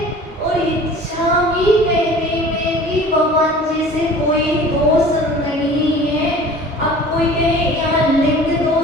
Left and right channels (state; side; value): normal; both; correlation 0.44